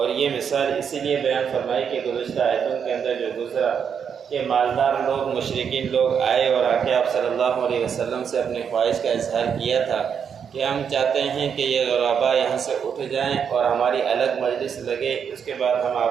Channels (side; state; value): left; quieter; 7.3 dB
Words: یہ مثال اسی لیے بیان فرمائی کہ گزشتہ آیتوں کے اندر جو گزرا کہ مالدار لوگ مشرکین لوگ آئے اور آ کے آپ صلی اللہ علیہ وسلم سے اپنی خواہش کا اظہار کیا تھا کہ ہم چاہتے ہیں کہ یہ غربا یہاں سے اٹھ جائیں اور ہماری الگ مجلس لگے، اس کے بعد ہم